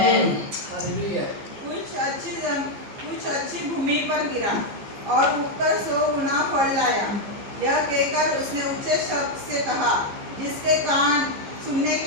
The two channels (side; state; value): left; late; 15 ms